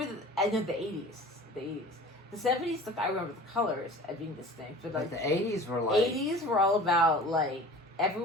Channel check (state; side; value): normal; both; correlation 0.41